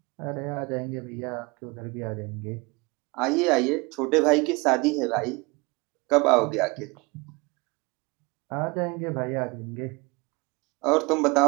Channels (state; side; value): quieter; left; 26.1 dB